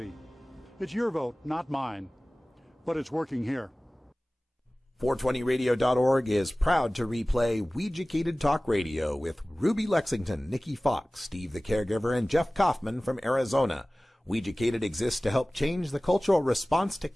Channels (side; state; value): both; normal; correlation 0.98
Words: It's your vote, not mine, but it's working here. 420radio.org is proud to replay Weeducated Talk Radio with Ruby Lexington, Nikki Fox, Steve the Caregiver, and Jeff Kaufman from Arizona. Weeducated exists to help change the cultural response to